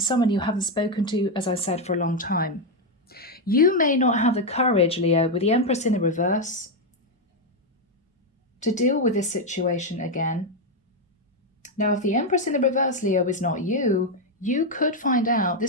someone you haven't spoken to, as I said, for a long time. You may not have the courage, Leo, with the Empress in the reverse, to deal with this situation again. Now, if the Empress in the reverse, Leo, is not you, you could find out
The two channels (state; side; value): normal; both; correlation 0.04